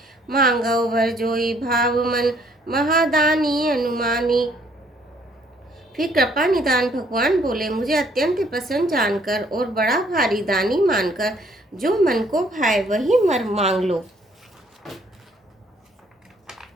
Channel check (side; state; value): both; normal; correlation 0.64